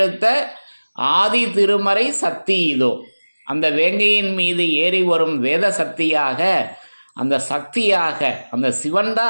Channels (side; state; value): both; inverted; correlation -1.00